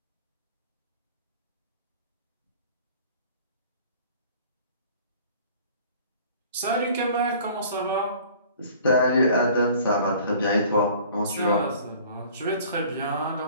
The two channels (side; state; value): both; inverted; correlation -0.50